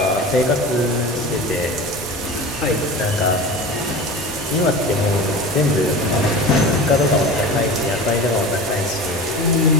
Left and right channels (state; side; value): normal; both; correlation 0.33